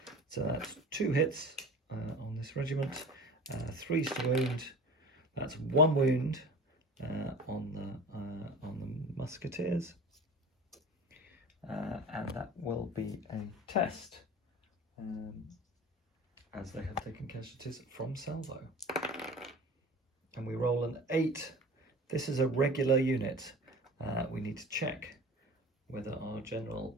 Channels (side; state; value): both; normal; correlation 0.38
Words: So that's 2 hits on this regiment, 3s to wound. That's 1 wound. On the musketeers, and that will be a test, as they have taken casualties from salvo. And we roll an 8. This is a regular unit. We need to check whether our general